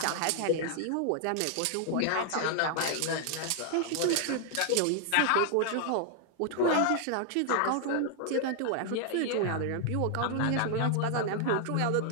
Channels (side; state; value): both; different; correlation 0.00